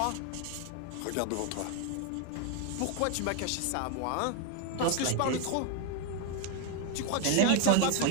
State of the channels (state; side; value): different; both; correlation 0.01